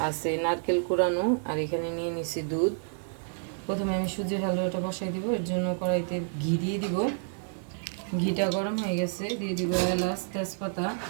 আছে, নারকেল কুড়ানো, আর এখানে নিয়ে নিছি দুধ। প্রথমে আমি সুজির হালুয়াটা বসাই দিব। এর জন্য কড়াইতে ঘি দিয়ে দিব। ঘিটা গরম হয়ে গেছে, দিয়ে দিব এলাচ, তেজপাতা,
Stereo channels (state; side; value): silent; left; digital silence